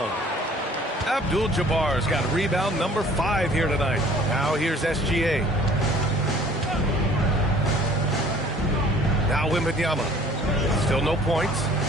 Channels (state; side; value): normal; both; correlation 0.53